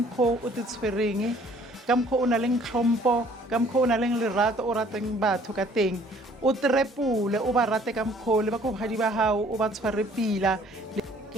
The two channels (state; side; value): normal; both; correlation 0.57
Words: o te tshwereng, ka mkho o na le tlhompo, ka mkho o na le lerato o rateng batho ka teng, o trepule o ba rate ka mkho le ba go hadi ba hao o ba tshware pila.